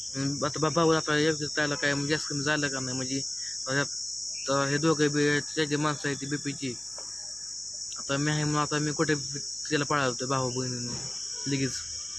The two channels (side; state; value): right; noise; hum, 28 dB below the sound